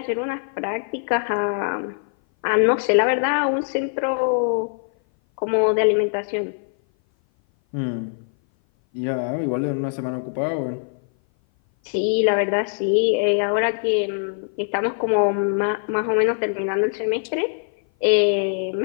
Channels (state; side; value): silent; right; 58 dB below the other